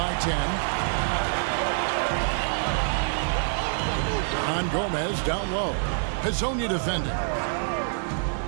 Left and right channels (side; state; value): left; silent; 61 dB below the other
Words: 10. On Gomez down low. Hezonja defending.